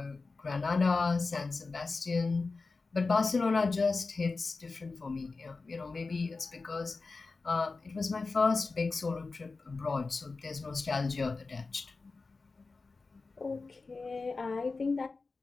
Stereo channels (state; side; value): quieter; right; 4.0 dB